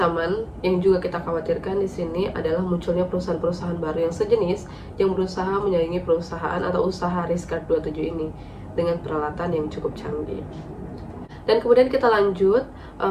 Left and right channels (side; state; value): both; identical; correlation 1.00